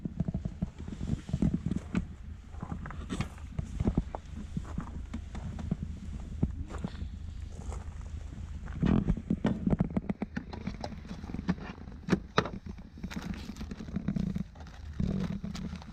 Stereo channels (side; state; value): both; identical; correlation 1.00